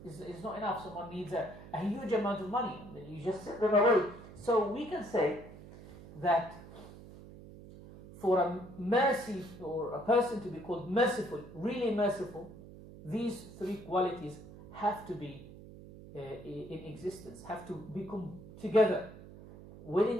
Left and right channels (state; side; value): noise; right; hum, 16 dB below the sound